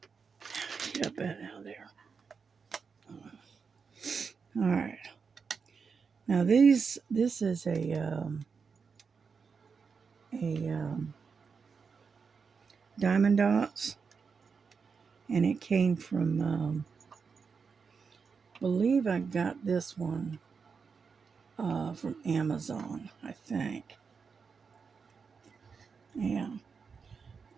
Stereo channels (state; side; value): quieter; left; 5.5 dB